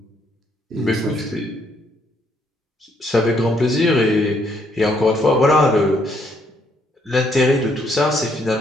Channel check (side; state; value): both; normal; correlation 0.70